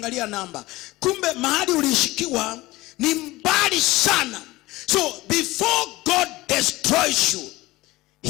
namba. Kumbe mahali ulishikiwa ni mbali sana. So before God destroys you,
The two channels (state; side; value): quieter; right; 19.5 dB